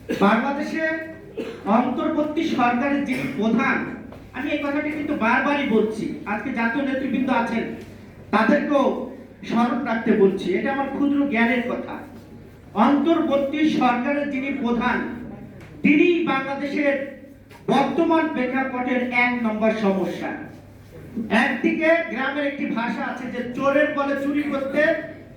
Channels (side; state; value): both; identical; correlation 1.00